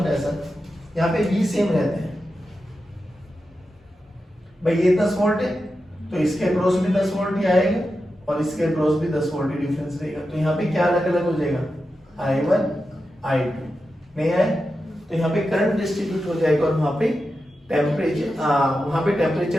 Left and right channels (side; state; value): both; normal; correlation 0.90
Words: है सर, यहाँ पे V सेम रहते हैं भाई, ये 10 वोल्ट है तो इसके अक्रॉस भी 10 वोल्ट ही आएगा और इसके अक्रॉस भी 10 वोल्ट ही डिफरेंस रहेगा, तो यहाँ पे क्या अलग अलग हो जाएगा? I1 I2 नहीं आए, तो यहाँ पे करंट डिस्ट्रीब्यूट हो जाएगा और वहां पे टेम्परेचर